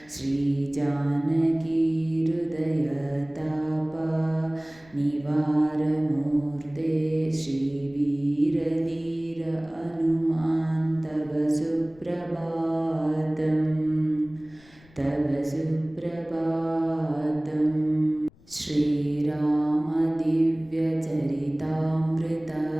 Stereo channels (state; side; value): noise; left; rumble, 27 dB below the sound